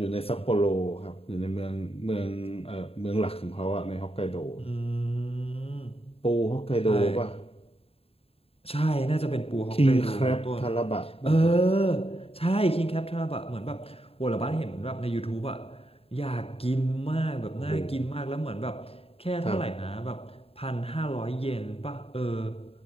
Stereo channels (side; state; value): right; late; 0.28 ms